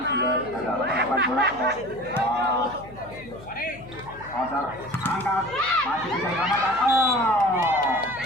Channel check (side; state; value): left; noise; hum, 19 dB below the sound